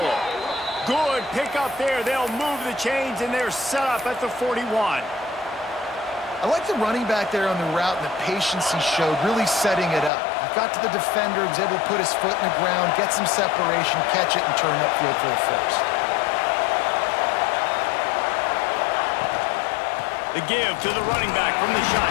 Good pick up there. They'll move the chains, and they're set up at the 41. I like the running back there on the route and the patience he showed, really setting it up. He got to the defender, was able to put his foot in the ground, get some separation, catch it, and turn upfield for the first. The give to the running back from the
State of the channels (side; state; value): right; drops out; at 10.1 s